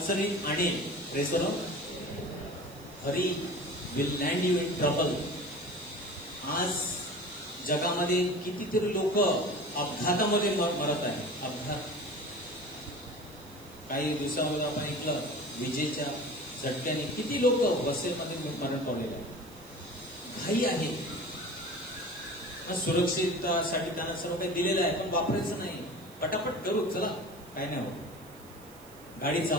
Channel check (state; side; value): noise; right; hiss, 23 dB below the sound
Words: आणेल. Praise the Lord. Hari will lend you in trouble. आज जगामध्ये कितीतरी लोक अपघातामध्ये मरत आहे. अपघात. काही दिवसामध्ये आपण ऐकलं, विजेच्या झटक्याने किती लोक बसेमध्ये मरण पावलेले आहेत. घाई आहे. सुरक्षिततासाठी त्यांना सर्व काही दिलेलं आहे, पण वापरायचं नाही. पटापट करू, चला, काय नाही होत. गाडी